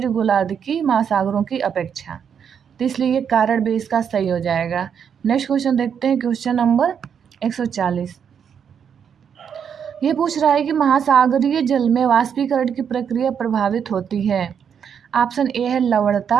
गोलार्ध की महासागरों की अपेक्षा। तो इसलिए ये कारण भी इसका सही हो जाएगा। नेक्स्ट क्वेश्चन देखते हैं, क्वेश्चन नंबर 140। ये पूछ रहा है कि महासागरीय जल में वाष्पीकरण की प्रक्रिया प्रभावित होती है। ऑप्शन ए है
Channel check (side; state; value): left; quieter; 7.6 dB